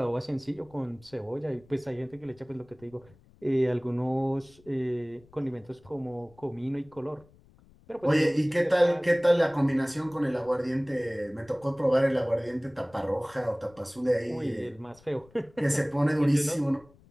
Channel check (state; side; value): noise; left; rumble, 27 dB below the sound